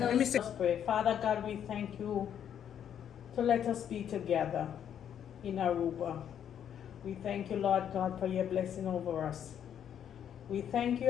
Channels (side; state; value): right; quieter; 9.2 dB